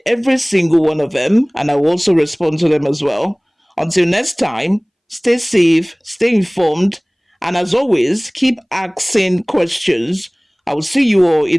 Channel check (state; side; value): identical; both; correlation 1.00